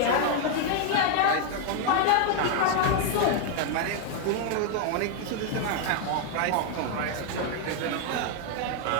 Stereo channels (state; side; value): different; both; correlation 0.00